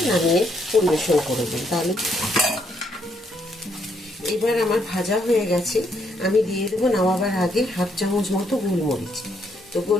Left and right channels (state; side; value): normal; both; correlation 0.73